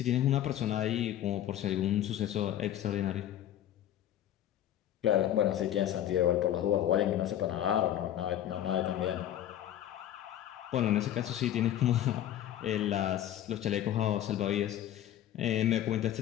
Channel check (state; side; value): quieter; right; 11.7 dB